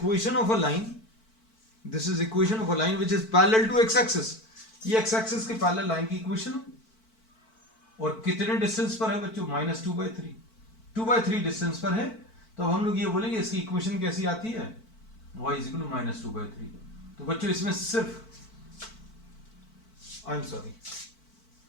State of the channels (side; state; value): right; late; 4.5 ms